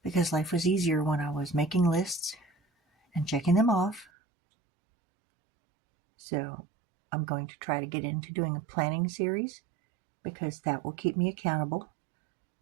because life was easier when I was making lists and checking them off. So I'm going to try to get into doing a planning series because that will keep me accountable.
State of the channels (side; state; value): left; drops out; at 4.0 s